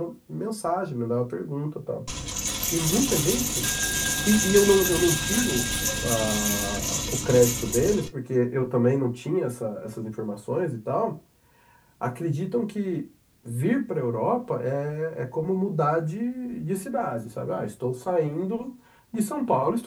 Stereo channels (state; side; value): identical; both; correlation 1.00